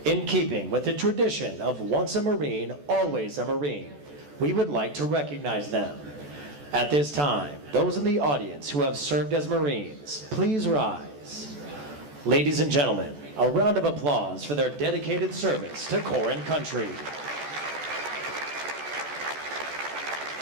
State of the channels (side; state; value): left; late; 14 ms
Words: In keeping with the tradition of once a Marine, always a Marine, we would like to recognize them. At this time, those in the audience who have served as Marines, please rise. Ladies and gentlemen, a round of applause for their dedicated service to Corps and country.